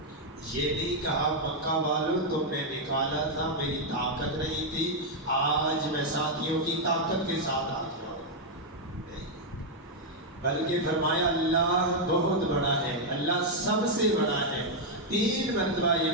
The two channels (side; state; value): both; normal; correlation -0.01